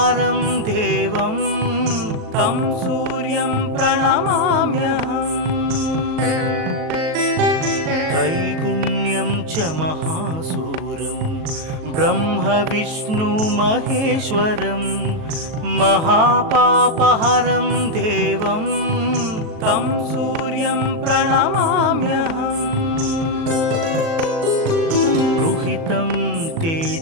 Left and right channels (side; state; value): left; late; 38 ms